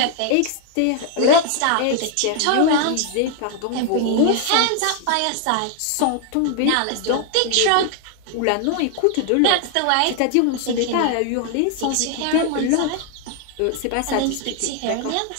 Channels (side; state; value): both; different; correlation 0.00